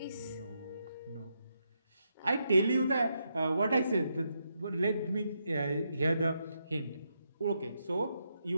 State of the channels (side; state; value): both; inverted; correlation -0.82